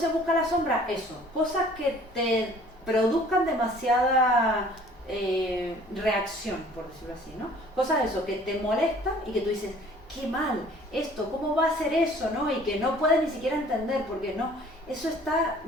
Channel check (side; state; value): both; normal; correlation 0.52